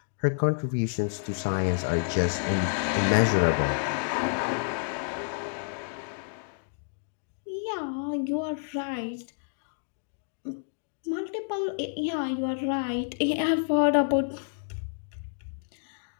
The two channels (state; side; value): silent; right; digital silence